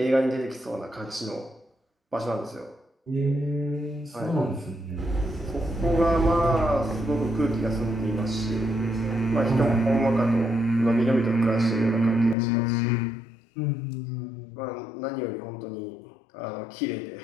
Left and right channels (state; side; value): drops out; right; at 12.4 s